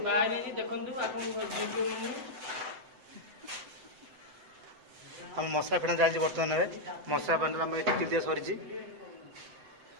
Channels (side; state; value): left; late; 7.8 ms